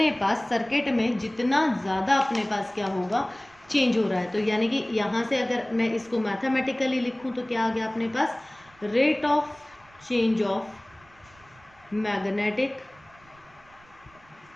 पास सर्किट में जितना ज़्यादा अपने पास क्या होगा, चेंज हो रहा है। तो यानी कि यहाँ से अगर मैं इसको मैथमेटिकली लिखूँ तो क्या आ गया अपने पास, rate of change of magnetic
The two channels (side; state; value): right; noise; rumble, 28 dB below the sound